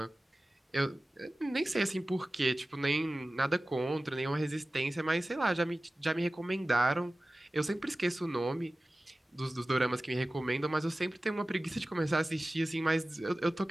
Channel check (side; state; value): both; normal; correlation 0.96